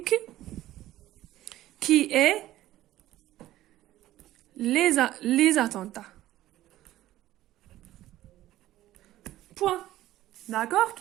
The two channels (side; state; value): left; quieter; 14.7 dB